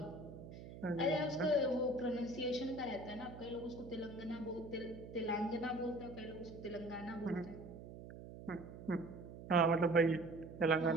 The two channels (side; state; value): right; noise; hum, 13 dB below the sound